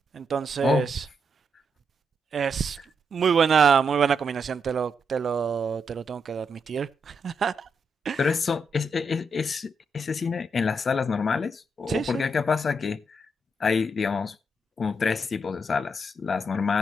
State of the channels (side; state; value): both; normal; correlation 0.79